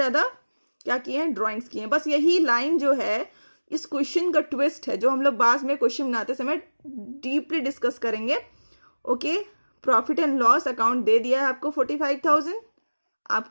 क्या किए हैं? ड्राइंग्स किए हैं. बस यही लाइन जो है इस क्वेश्चन का ट्विस्ट है, जो हम लोग बाद में क्वेश्चन बनाते समय डीपली डिस्कस करेंगे. Okay, profit and loss account दे दिया है आपको 45,000.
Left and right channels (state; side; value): inverted; both; correlation -1.00